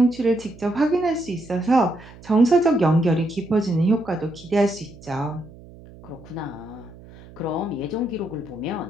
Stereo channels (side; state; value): right; noise; hum, 20 dB below the sound